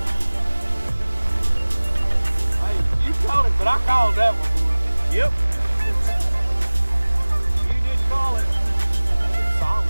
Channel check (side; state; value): both; inverted; correlation -1.00